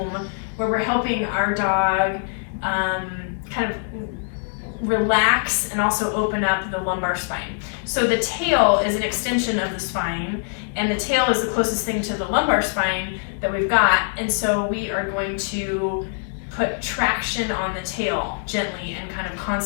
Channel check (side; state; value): right; silent; digital silence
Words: where we're helping our dog kind of relax and also open up the lumbar spine. So the tail is an extension of the spine, and the tail is the closest thing to the lumbar spine that we've got, and so we are going to put traction on the tail gently and kind of